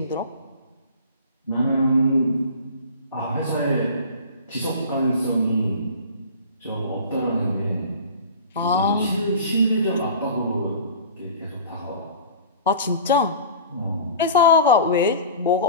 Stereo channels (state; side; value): inverted; both; correlation -0.40